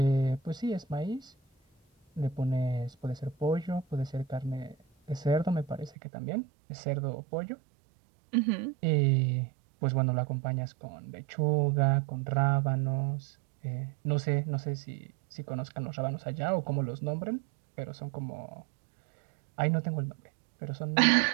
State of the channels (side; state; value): left; drops out; at 5.9 s